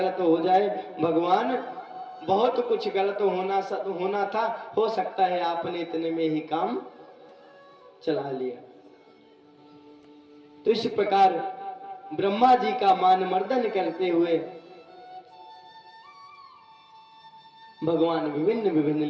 हो जाए, भगवान बहुत कुछ गलत होना था, हो सकता है आपने इतने में ही काम चला लिया। तो इस प्रकार ब्रह्मा जी का मान मर्दन करते हुए भगवान विभिन्न विभिन्न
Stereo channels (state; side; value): identical; both; correlation 1.00